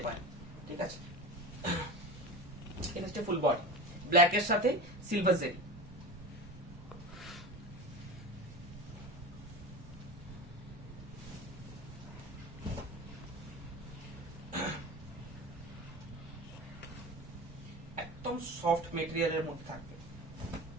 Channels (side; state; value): both; normal; correlation 0.30